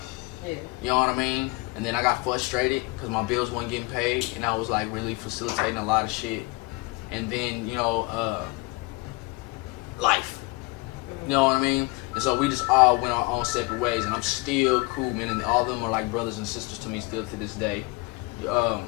Yeah. You know what I mean? And then I got frustrated because my bills weren't getting paid, and I was like really facilitating a lot of shit. And then, you know, life. You know what I mean? And so we just all went our own separate ways, and I'm still cool, man. And all of them are like brothers and sisters to me still to this day.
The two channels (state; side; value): quieter; right; 25.3 dB